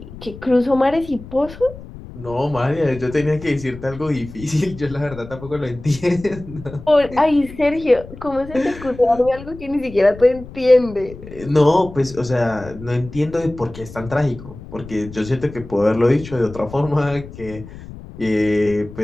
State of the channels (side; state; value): left; noise; rumble, 15 dB below the sound